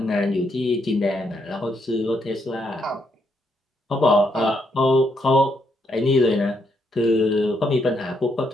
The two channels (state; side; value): normal; both; correlation 0.76